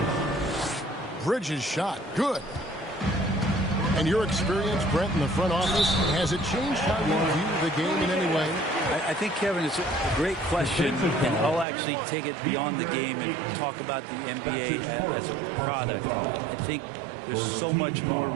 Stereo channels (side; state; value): left; drops out; at 11.7 s